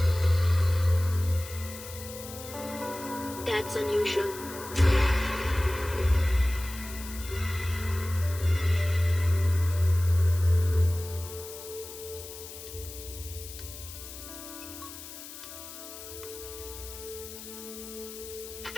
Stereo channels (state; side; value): noise; left; hiss, 13 dB below the sound